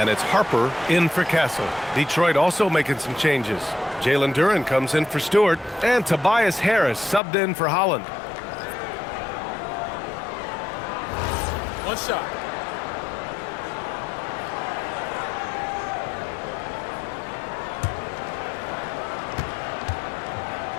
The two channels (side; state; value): right; drops out; at 7.2 s